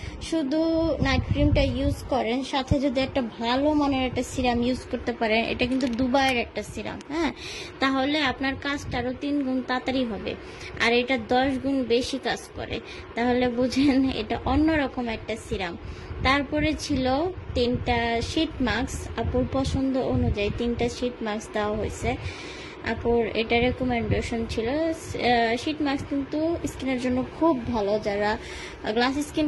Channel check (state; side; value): identical; both; correlation 1.00